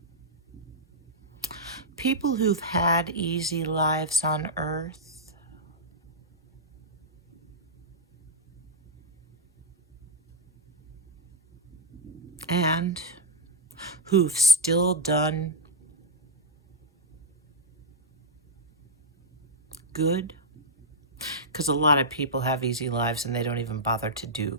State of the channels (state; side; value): normal; both; correlation -0.05